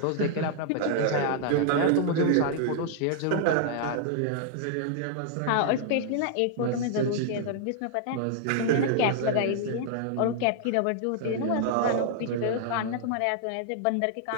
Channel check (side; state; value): both; different; correlation -0.01